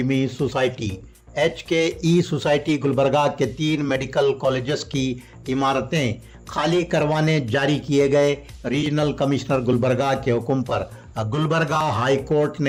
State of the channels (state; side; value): identical; both; correlation 1.00